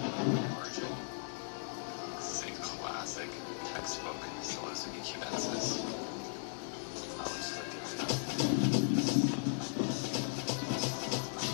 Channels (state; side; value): silent; right; digital silence